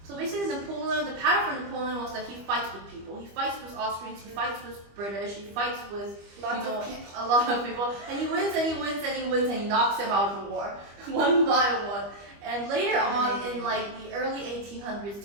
So basically Napoleon, the pattern for Napoleon was that he fights with people. He fights with Austrians, he fights with British, he fights with Lots of people. a lot of people. And he wins and he wins and he wins and he knocks them out of the war. One by one. And later on in the early 1800s,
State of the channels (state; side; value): late; left; 25 ms